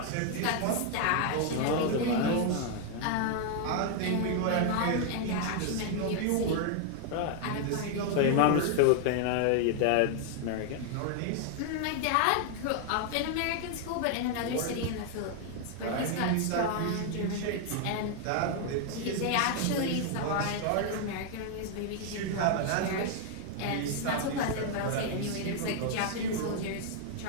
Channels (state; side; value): different; both; correlation 0.00